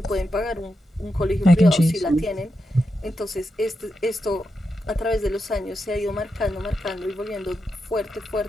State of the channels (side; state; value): both; normal; correlation 0.87